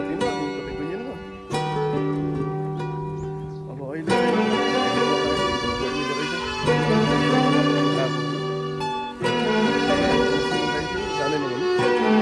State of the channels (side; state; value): both; identical; correlation 1.00